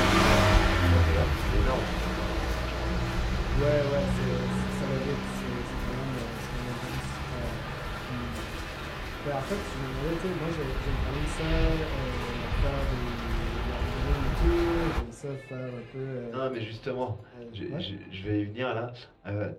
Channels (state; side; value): identical; both; correlation 1.00